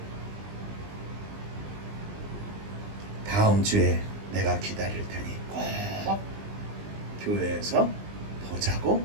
다음 주에 내가 기다릴 테니 꼭 교회에서 보자고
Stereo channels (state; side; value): late; left; 20 ms